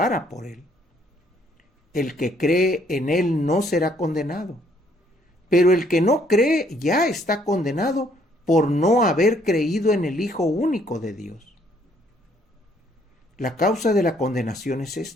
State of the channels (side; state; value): both; normal; correlation 0.66